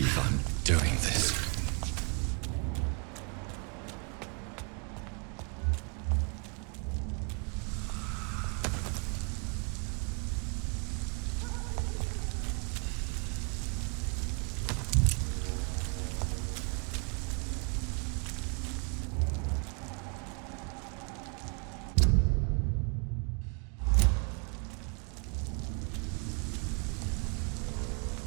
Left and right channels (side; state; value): left; quieter; 37.4 dB